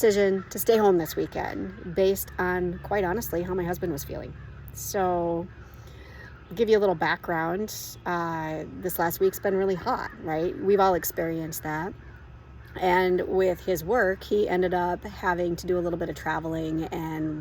to stay home this weekend based on, quite honestly, how my husband was feeling. So give you a little background. This last week's been really hot, right? We've all experienced that. And with his work, he ended up having to do a little bit of traveling,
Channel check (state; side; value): identical; both; correlation 1.00